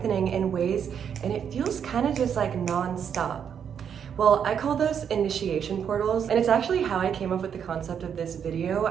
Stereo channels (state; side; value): quieter; left; 7.9 dB